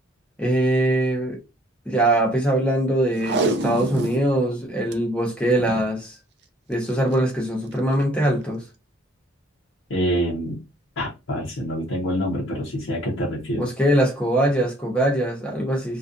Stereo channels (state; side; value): normal; both; correlation 0.61